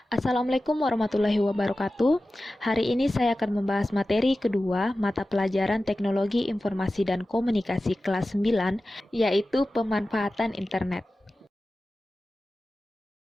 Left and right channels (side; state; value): both; normal; correlation 0.95